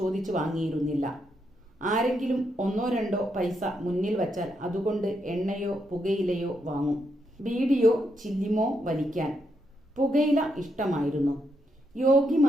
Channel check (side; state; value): both; normal; correlation 0.80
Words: വാങ്ങിയിരുന്നില്ല. ആരെങ്കിലും 1-2 പൈസ മുന്നിൽ വച്ചാൽ അതുകൊണ്ട് എണ്ണയോ പുകയിലയോ വാങ്ങും. ബീഡിയോ ചില്ലിമോ വലിക്കാൻ. പുകയില ഇഷ്ടമായിരുന്നു.